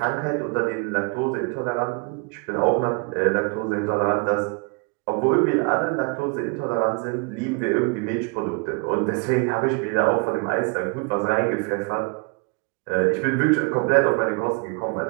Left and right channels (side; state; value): left; quieter; 31.6 dB